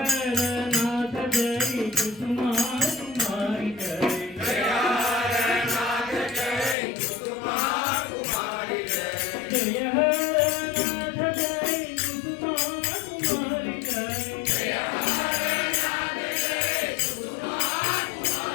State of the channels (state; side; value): drops out; right; at 6.8 s